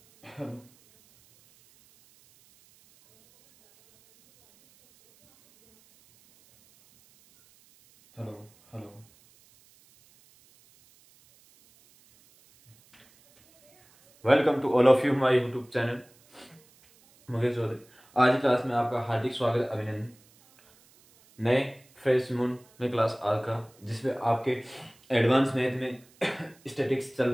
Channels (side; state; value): right; noise; hiss, 30 dB below the sound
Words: hello hello hello. Welcome to all of you my YouTube channel Mukesh Chaudhary. आज की class में आपका हार्दिक स्वागत, अभिनंदन। नए फ्रेश मून में क्लास आज का, जिसमें आपके एडवांस मैथ में स्टैटिक्स चल